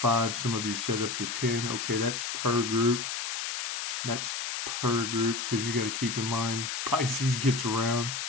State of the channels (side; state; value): left; noise; hiss, 3 dB below the sound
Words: some of you said up to 10. Okay, that's per group. That's per group, because you got to keep in mind, Pisces gets around.